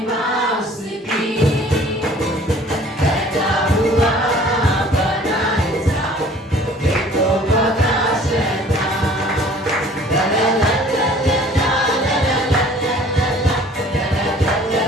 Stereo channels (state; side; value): normal; both; correlation 0.51